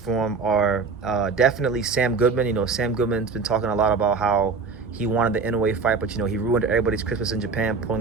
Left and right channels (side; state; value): left; quieter; 4.8 dB